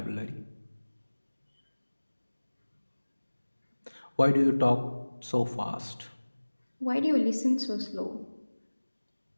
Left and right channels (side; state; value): both; inverted; correlation -1.00